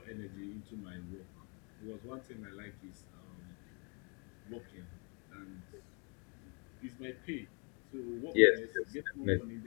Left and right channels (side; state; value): right; quieter; 35.0 dB